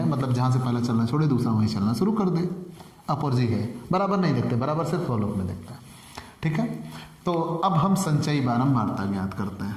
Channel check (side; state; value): both; identical; correlation 1.00